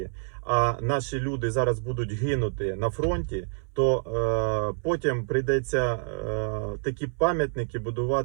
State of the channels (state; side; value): silent; left; 60 dB below the other